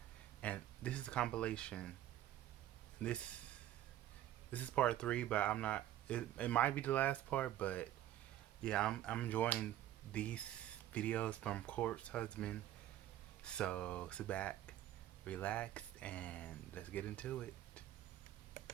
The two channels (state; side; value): quieter; left; 12.8 dB